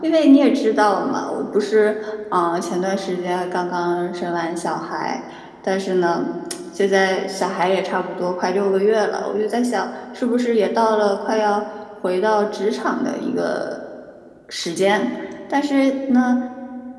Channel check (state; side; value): identical; both; correlation 1.00